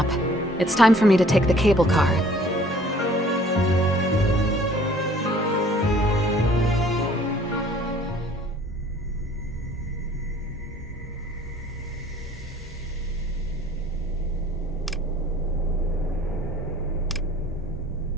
it's time for me to take the cable car.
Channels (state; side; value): normal; both; correlation 0.55